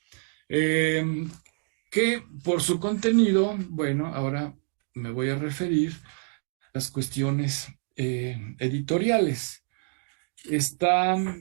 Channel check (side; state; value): left; silent; 60 dB below the other